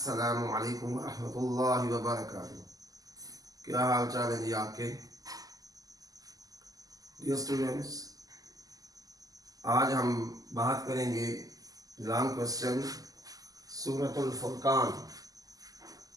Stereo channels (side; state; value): left; late; 0.17 ms